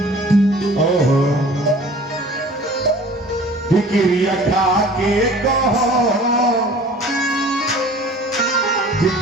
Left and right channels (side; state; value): both; normal; correlation 0.47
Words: ओहो फिक्रिया खा के कहो